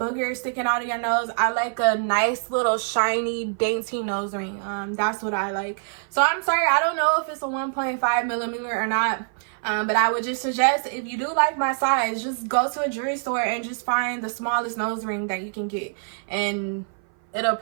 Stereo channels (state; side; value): silent; left; 57 dB below the other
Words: sticking out of your nose. I like a nice little shiny dainty nose ring. That's what I like. So I'm sorry, I don't know if it's a 1.5 millimeter or not. But I would just suggest, if you do like my size, just go to a jewelry store and just find the smallest nose ring that you can get, and it'll